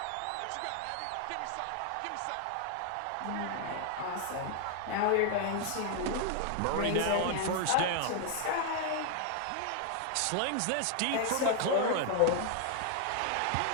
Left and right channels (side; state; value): both; different; correlation 0.00